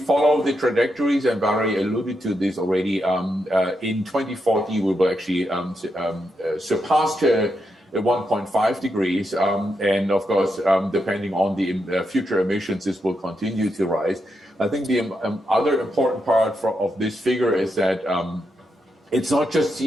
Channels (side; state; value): both; normal; correlation 0.83